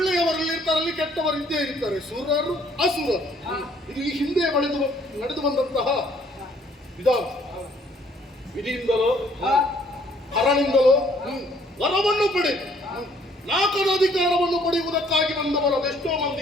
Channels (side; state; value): both; normal; correlation 0.62